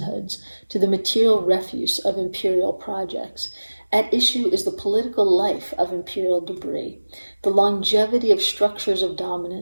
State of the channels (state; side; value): inverted; both; correlation -1.00